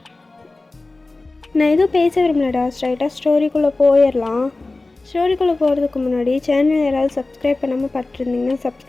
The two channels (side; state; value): right; quieter; 3.2 dB